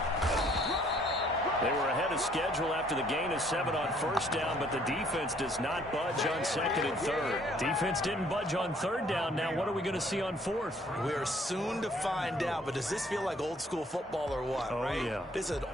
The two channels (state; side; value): normal; both; correlation 0.62